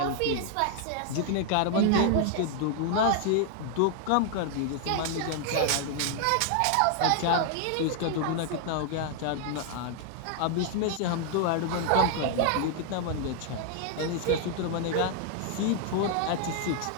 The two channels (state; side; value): different; both; correlation 0.00